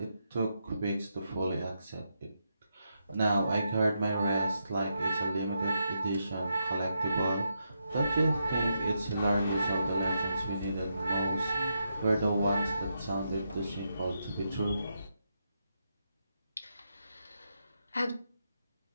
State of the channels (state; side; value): inverted; both; correlation -0.83